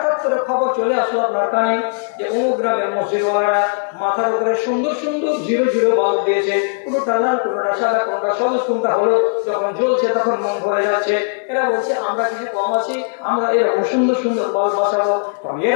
করে খবর চলে আসলো আপনার কানে যে অমুক গ্রামের মসজিদওয়ালারা মাথার উপরে সুন্দর সুন্দর 0 বাল্ব দিয়েছে, কোনটা লাল, কোনটা সাদা, কোনটা সবুজ, কোনটা হলুদ। যখন জ্বলছে তখন মন ভরে যাচ্ছে। এরা বলছে আমরা কিছু কম আছি, আমরা এরকম সুন্দর সুন্দর বাল্ব বসাবো।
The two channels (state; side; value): silent; right; digital silence